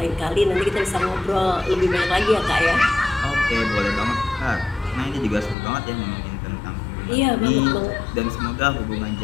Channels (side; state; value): right; drops out; at 5.6 s